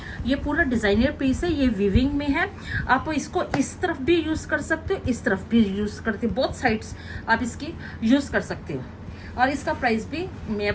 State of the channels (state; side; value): identical; both; correlation 1.00